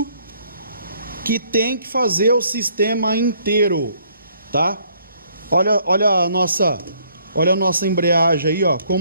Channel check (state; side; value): inverted; both; correlation -0.65